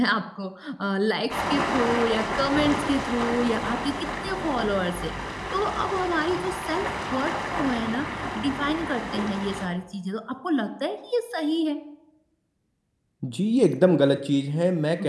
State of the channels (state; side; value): identical; both; correlation 1.00